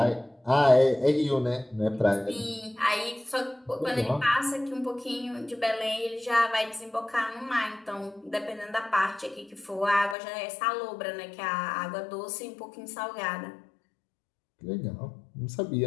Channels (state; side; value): drops out; right; at 10.2 s